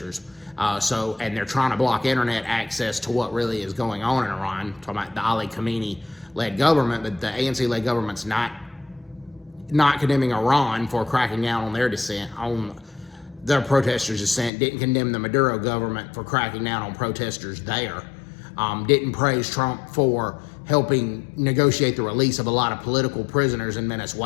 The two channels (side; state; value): right; drops out; at 14.5 s